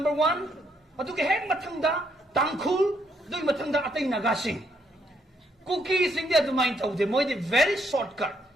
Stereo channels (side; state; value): both; normal; correlation 0.73